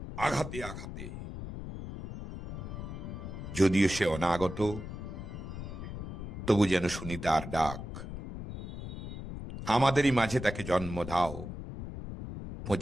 আঘাতে আঘাতে। যদিও সে অনাগত, তবু যেন শুনি তার ডাক। আমাদেরই মাঝে তাকে জন্ম দাও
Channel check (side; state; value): left; noise; rumble, 8 dB below the sound